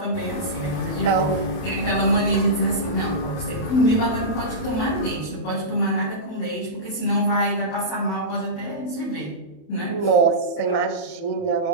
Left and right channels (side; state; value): right; late; 27 ms